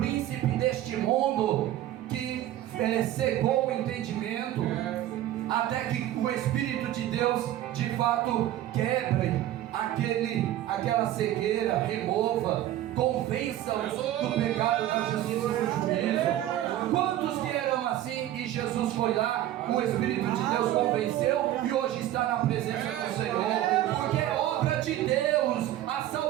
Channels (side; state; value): left; quieter; 13.2 dB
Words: deste mundo que cegou o entendimento, até que o Espírito de Deus de fato quebre aquela cegueira, remova, convença-os do pecado, da justiça e do juízo. Quantos que eram assim e Jesus foi lá, o Espírito de Deus convenceu e hoje está na presença do Senhor? Porque é obra de Deus, a